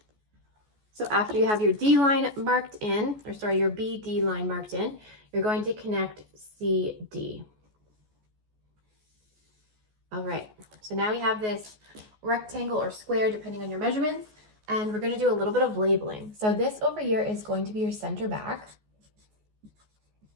So after you have your D line marked in, or sorry, your BD line marked in, you're going to connect CD. All right, so now we have this rectangle or square, depending on your measurements, and we're going to do a little bit of labeling. So this over here is going to be your center back.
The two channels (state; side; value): late; left; 14 ms